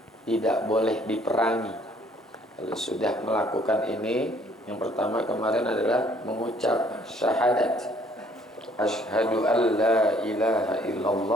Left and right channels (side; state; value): both; normal; correlation 0.61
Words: tidak boleh diperangi. Kalau sudah melakukan ini, yang pertama kemarin adalah mengucap syahadat, asyhadu an la ilaha